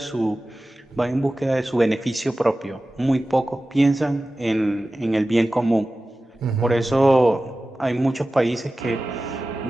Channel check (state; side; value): normal; both; correlation 0.96